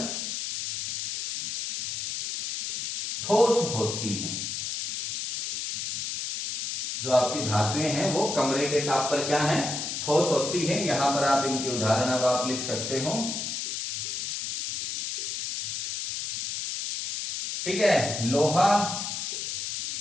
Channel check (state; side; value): noise; left; hiss, 4 dB below the sound